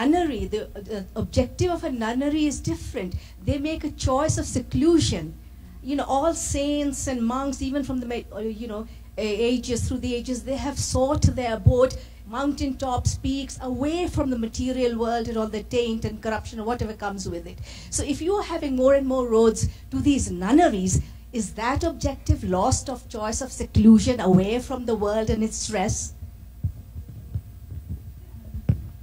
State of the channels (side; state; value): both; identical; correlation 1.00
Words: the objective of a nunnery is different. They make a choice of seclusion. You know, all saints and monks, even from the ages, through the ages, they have sought their abode, mountaintops, peaks, away from the material world and all the taint and corruption or whatever comes with it. So if you are having more and more roads to these nunneries, is that objective lost of choice of seclusion away from the world and its stress?